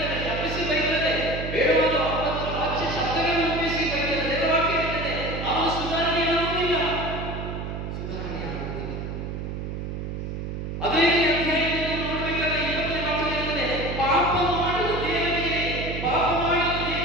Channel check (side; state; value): right; noise; hum, 5 dB below the sound